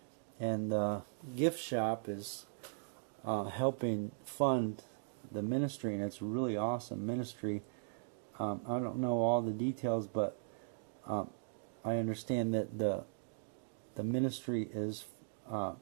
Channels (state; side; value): silent; left; digital silence